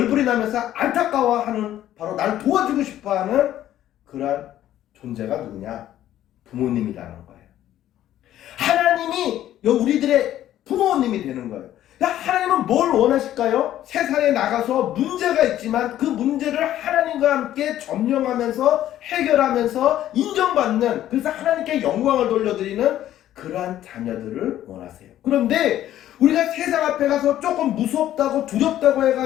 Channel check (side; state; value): right; quieter; 12.5 dB